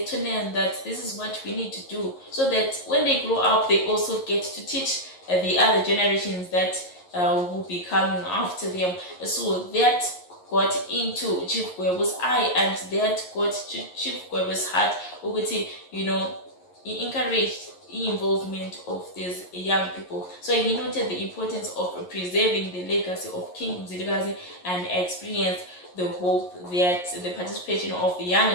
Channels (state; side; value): late; right; 11 ms